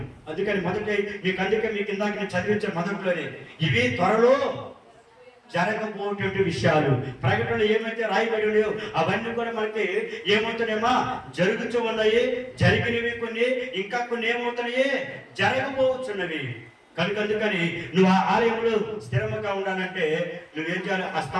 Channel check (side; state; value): both; identical; correlation 1.00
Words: అందుకని మీకు ఇందాక నేను చదివించిన మొదట్లోనే ఇవి త్వరలో జరగబోయేటువంటి విషయాలు. ప్రకటనలు ఏమైతే రాయబడి ఉన్నాయో అవన్నీ కూడా మనకి ఏమవుతున్నాయమ్మా, జరుగుతూ ఉన్నాయి. జరిగినవి కొన్ని, ఇంకా కొన్ని ఏమవుతున్నాయి, జరగబోతున్నవి. అందుకని నువ్వు ఆ ఆలయంలో స్థిరముగా ఉండాలంటే నువ్వేం చేయాలి, ఆ